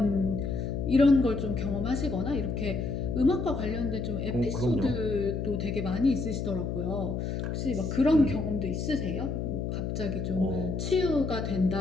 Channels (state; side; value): noise; left; hum, 2 dB below the sound